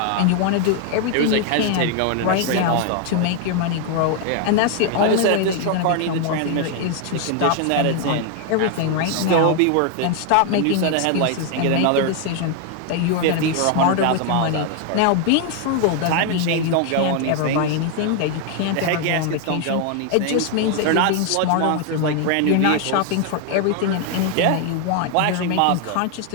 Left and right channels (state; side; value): different; both; correlation 0.01